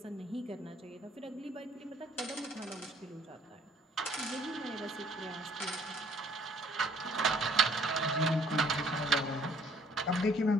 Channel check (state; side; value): normal; both; correlation 0.61